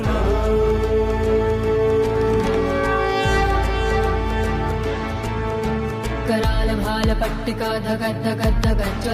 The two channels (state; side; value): identical; both; correlation 1.00